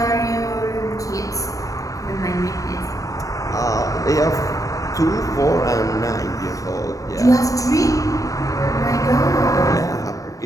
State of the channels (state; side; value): late; right; 0.16 ms